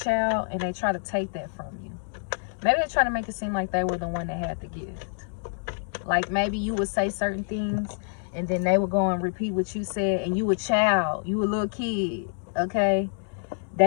and they try to take that from you. Maybe they try to make it seem like they were the one that had the gift. Like, maybe you would say certain things, and then they would go and repeat what you said, and you a child, you a little kid, okay?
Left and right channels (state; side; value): silent; right; digital silence